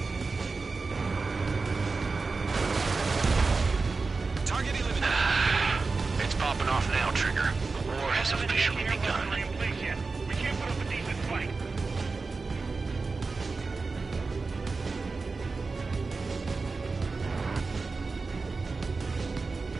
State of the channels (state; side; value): quieter; left; 4.1 dB